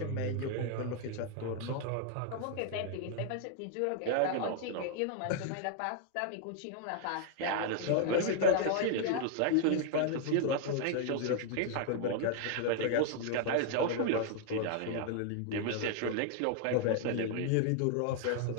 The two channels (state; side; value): different; both; correlation 0.00